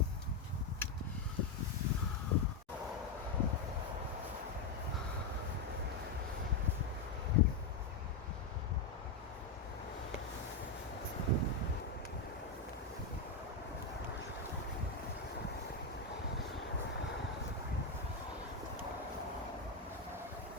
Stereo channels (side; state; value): right; quieter; 3.9 dB